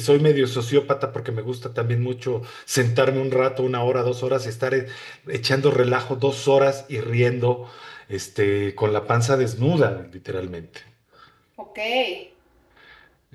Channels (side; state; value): both; identical; correlation 1.00